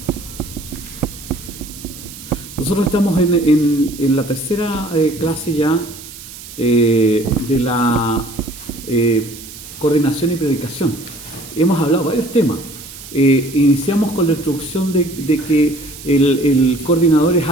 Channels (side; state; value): right; noise; hiss, 15 dB below the sound